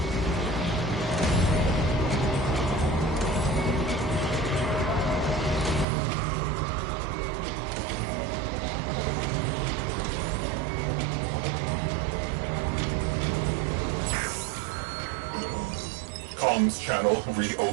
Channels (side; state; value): left; drops out; at 5.9 s